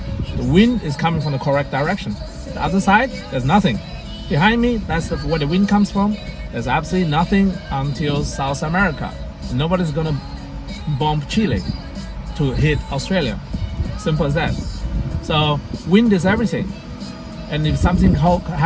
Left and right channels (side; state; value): both; identical; correlation 1.00